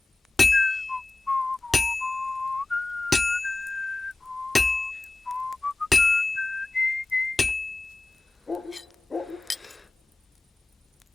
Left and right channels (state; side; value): quieter; right; 3.3 dB